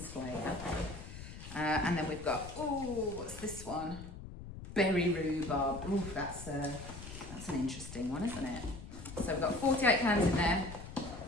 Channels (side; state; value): left; noise; rumble, 12 dB below the sound